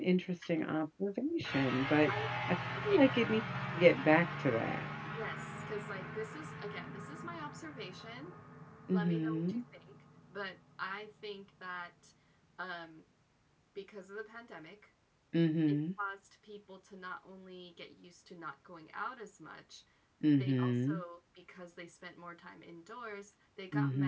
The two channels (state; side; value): identical; both; correlation 1.00